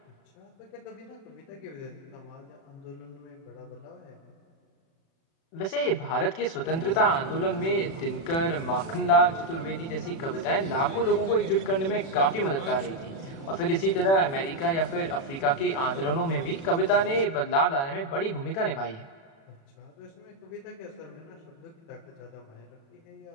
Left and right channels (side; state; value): right; late; 36 ms